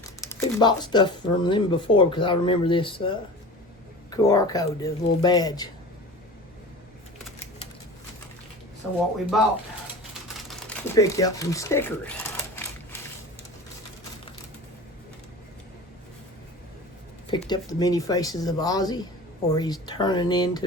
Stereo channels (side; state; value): both; normal; correlation 0.35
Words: We've bought stuff from them before because I remember this QR code, this little badge. So what we bought, we picked up some stickers. Picked up the many faces of Ozzy, or he's turning